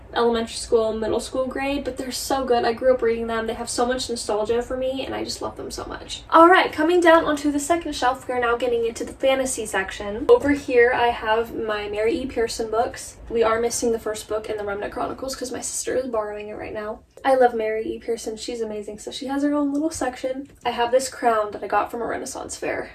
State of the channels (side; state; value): both; identical; correlation 1.00